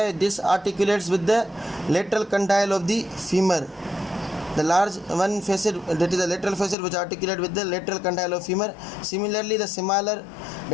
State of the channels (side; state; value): right; drops out; at 6.8 s